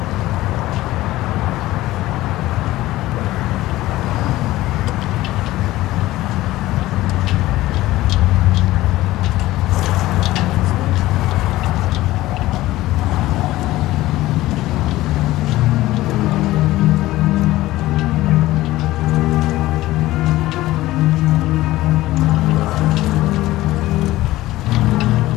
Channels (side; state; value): right; quieter; 16.8 dB